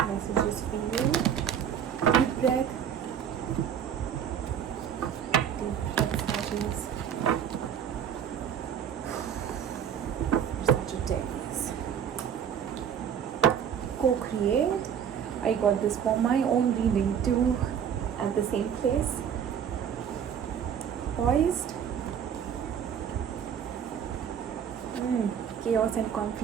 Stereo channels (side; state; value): left; quieter; 8.5 dB